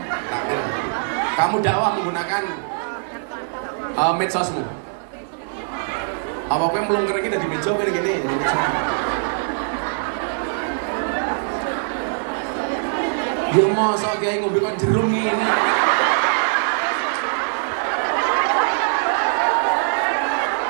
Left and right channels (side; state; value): left; silent; digital silence